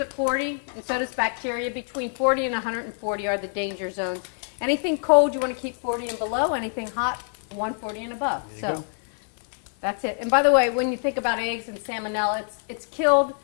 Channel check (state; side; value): silent; right; 61 dB below the other